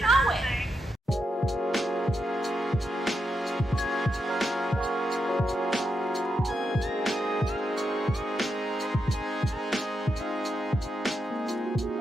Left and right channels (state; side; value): normal; both; correlation 0.84